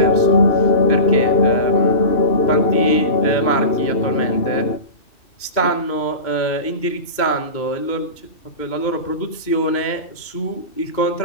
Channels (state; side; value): late; right; 2.2 ms